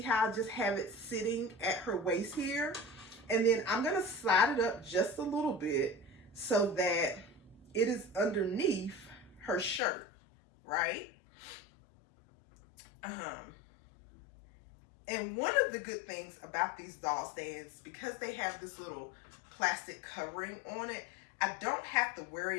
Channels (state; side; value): drops out; right; at 9.8 s